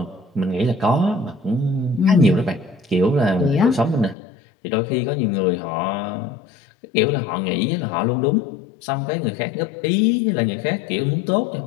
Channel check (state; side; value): drops out; right; at 4.2 s